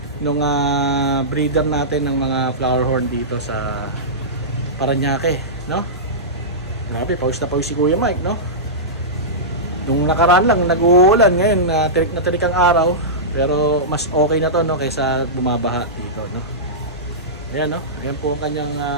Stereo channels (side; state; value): both; normal; correlation -0.16